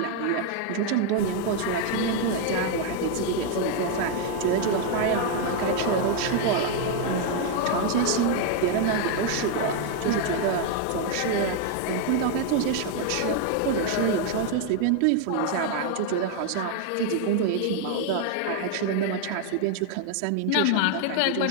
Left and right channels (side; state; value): both; different; correlation 0.01